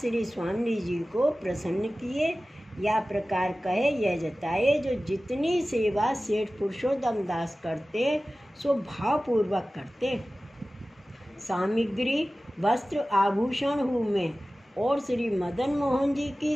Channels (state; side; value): normal; both; correlation 0.96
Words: स्वामी जी को प्रसन्न किए। या प्रकार कहे यह जताए, जो जितनी सेवा सेठ पुरुषोत्तम दास करते, सो भावपूर्वक करते। सामग्री वस्त्र आभूषण हूँ में, और श्री मदन मोहन जी की